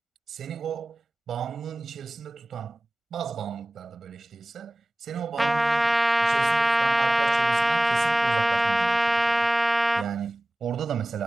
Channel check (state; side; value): normal; both; correlation 0.97